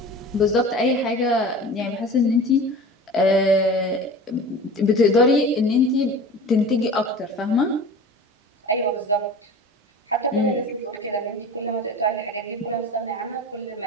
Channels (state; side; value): normal; both; correlation 0.36